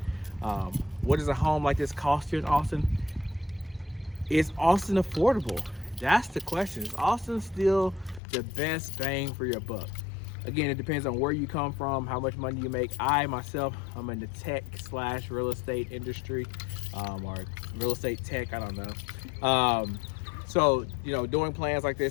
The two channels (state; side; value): drops out; right; at 8.2 s